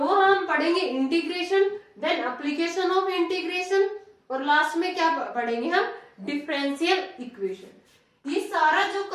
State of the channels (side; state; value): both; identical; correlation 1.00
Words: हम पढ़ेंगे integration, then application of integration, और लास्ट में क्या पढ़ेंगे हम? Differential equation. ये सारा जो